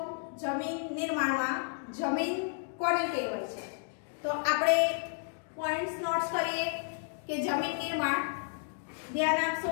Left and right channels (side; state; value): right; silent; 56 dB below the other